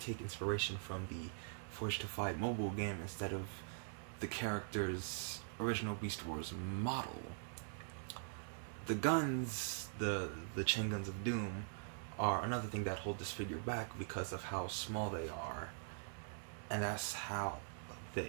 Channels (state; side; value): silent; left; digital silence